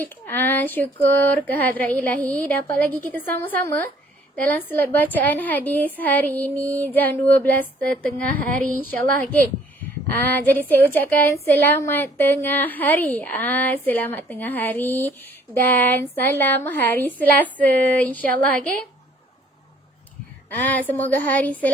Syukur kehadrat ilahi dapat lagi kita sama-sama dalam slot bacaan hadis hari ini jam 12.30 hari insyaAllah. Okay. Jadi saya ucapkan selamat tengah hari. Selamat tengah hari dan salam hari Selasa insyaAllah. Okay. Semoga hari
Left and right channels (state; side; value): normal; both; correlation 0.59